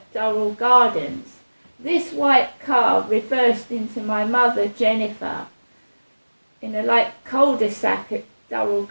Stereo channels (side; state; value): both; inverted; correlation -1.00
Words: Durrell Gardens. This white car reversed into my mother, Jennifer, in a cul-de-sac at Durrell